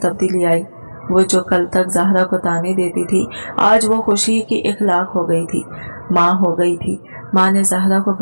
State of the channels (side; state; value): both; inverted; correlation -1.00